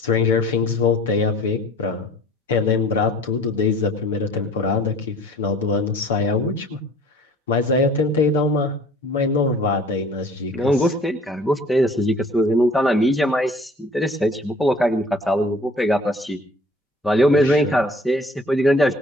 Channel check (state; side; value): normal; both; correlation 0.50